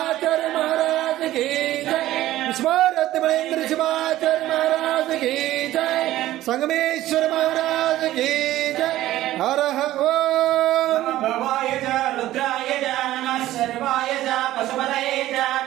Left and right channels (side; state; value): left; quieter; 14.8 dB